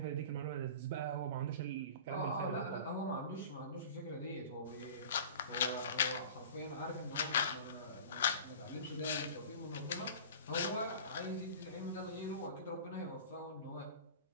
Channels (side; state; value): both; inverted; correlation -0.39